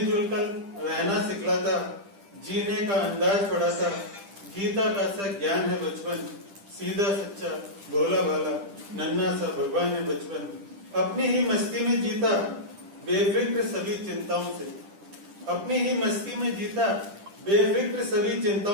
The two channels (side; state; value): left; late; 10 ms